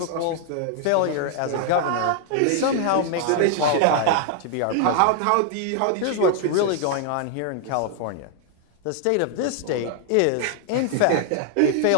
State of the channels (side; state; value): both; different; correlation 0.00